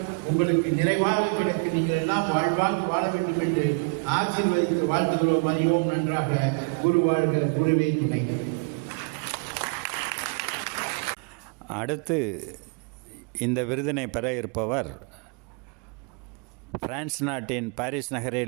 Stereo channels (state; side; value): quieter; left; 35.0 dB